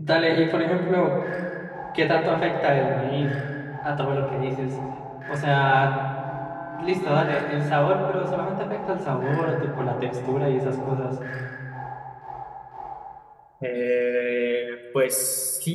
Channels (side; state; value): both; identical; correlation 1.00